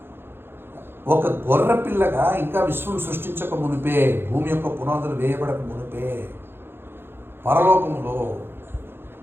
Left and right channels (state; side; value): late; left; 0.11 ms